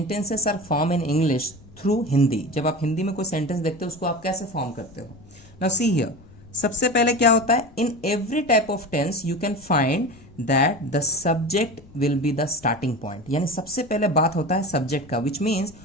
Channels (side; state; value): left; noise; rumble, 23 dB below the sound